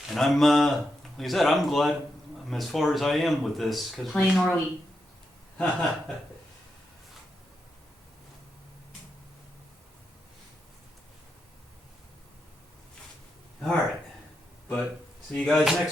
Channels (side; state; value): both; normal; correlation 0.84